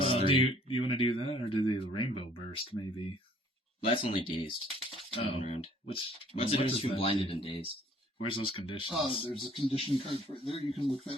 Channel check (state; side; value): normal; both; correlation 0.58